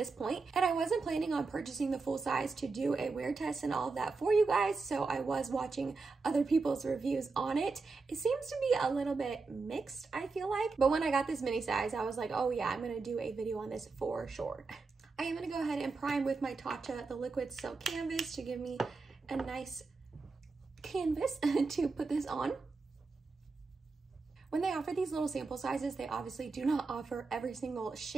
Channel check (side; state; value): left; quieter; 4.2 dB